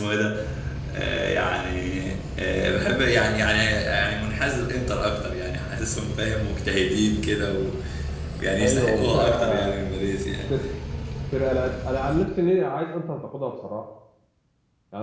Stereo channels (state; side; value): identical; both; correlation 1.00